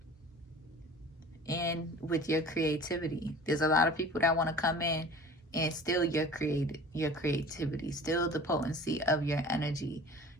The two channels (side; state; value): both; normal; correlation 0.42